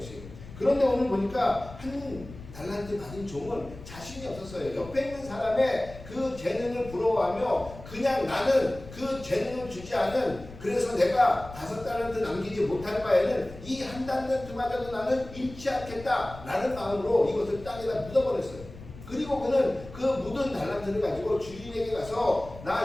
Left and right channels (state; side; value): noise; left; rumble, 16 dB below the sound